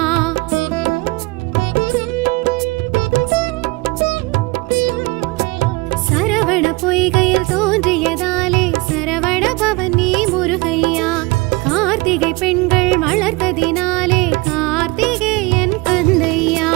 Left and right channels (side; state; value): left; quieter; 24.4 dB